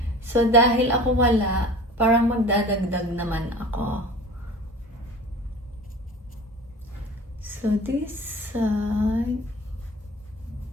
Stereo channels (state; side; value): normal; both; correlation 0.40